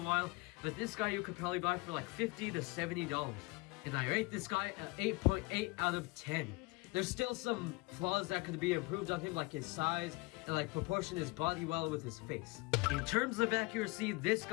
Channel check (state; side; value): quieter; right; 25.5 dB